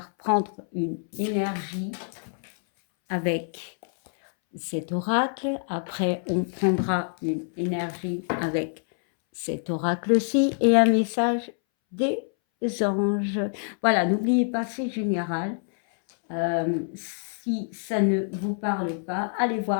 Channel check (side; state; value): right; silent; 61 dB below the other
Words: prendre une énergie avec cet oracle. Après, on prendra une énergie avec cet oracle-ci et un message des anges. Voilà, n'oubliez pas, c'est général. Si ça ne vous parle pas, allez